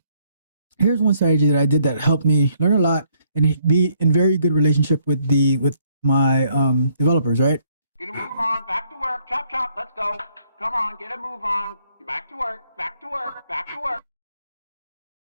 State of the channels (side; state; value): both; inverted; correlation -0.68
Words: here's one strategy that I did that helped me learn a lot and be in very good relationship with my developers, right? Get a move on, back to work, chop chop, let's go. Come on, get a move on. Back to work, back to work, back to work.